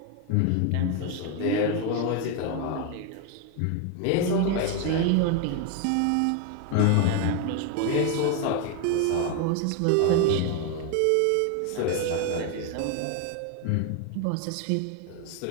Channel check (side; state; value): both; different; correlation 0.01